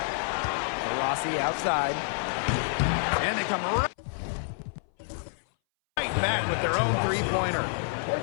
Rossi outside. And they come right back with their own 3-pointer.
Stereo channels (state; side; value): silent; right; 59 dB below the other